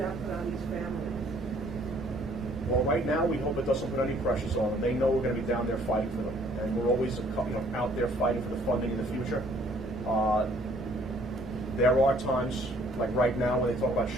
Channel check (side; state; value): both; normal; correlation 0.60